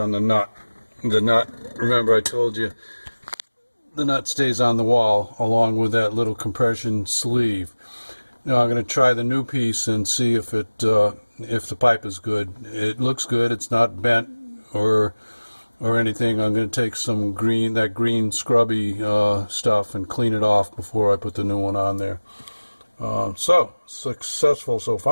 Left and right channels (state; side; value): inverted; both; correlation -1.00